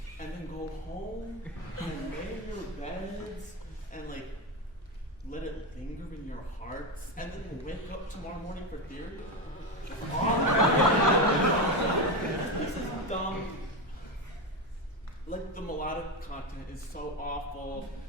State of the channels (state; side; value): normal; both; correlation 0.15